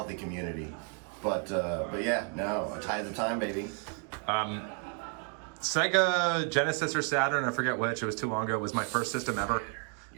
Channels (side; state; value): left; quieter; 38.9 dB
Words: community, but yeah, no, a tide of the time, baby. Sega Genesis or Saturn, I forget which. It was too long ago. It was my first system ever.